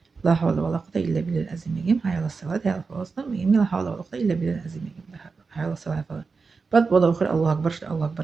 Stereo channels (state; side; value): quieter; left; 4.6 dB